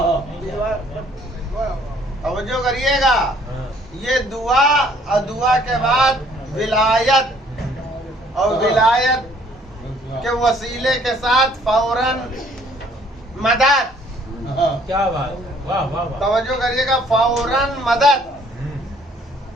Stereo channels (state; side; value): normal; both; correlation 0.61